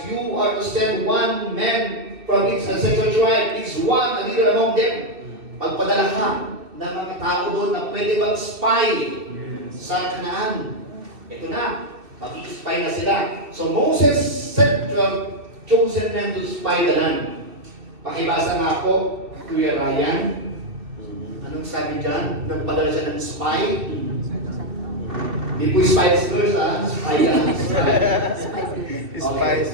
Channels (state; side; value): late; left; 2.7 ms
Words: You are to send one man from each ancestral tribe, each one a leader among them. Pagpadala ka ng mga tao doon na pwede mag-spy sa Canaan. Ito na, mag-spy na sila. So Moses sent 12 chosen men to spy the land. Pakibasa nga po, Kuya Ryan. Anong sabi dyan? Nagpadala siya ng spy? Hindi po Spice Girls, ha? Spy lang. Spice